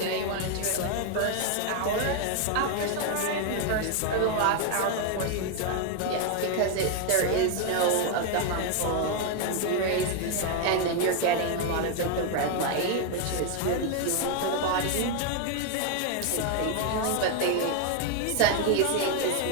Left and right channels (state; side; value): different; both; correlation 0.01